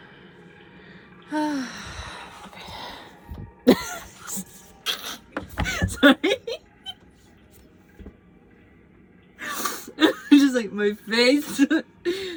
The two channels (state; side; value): identical; both; correlation 1.00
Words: Sorry. Just like my face.